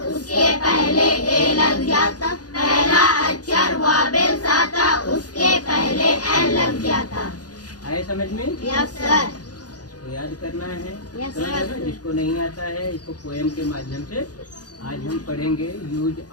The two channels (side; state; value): right; late; 0.68 ms